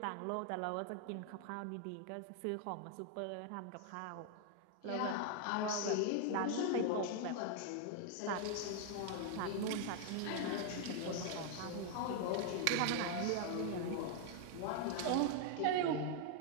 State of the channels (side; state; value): both; different; correlation 0.00